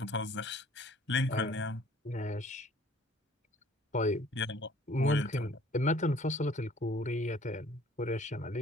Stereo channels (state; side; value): normal; both; correlation 0.54